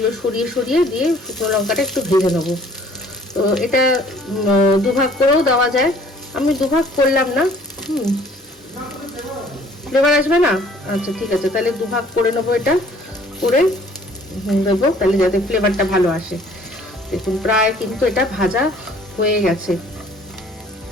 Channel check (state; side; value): normal; both; correlation 0.56